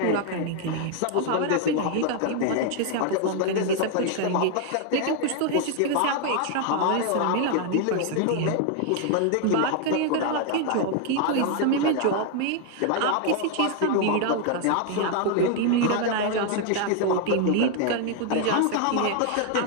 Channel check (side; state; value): both; different; correlation 0.00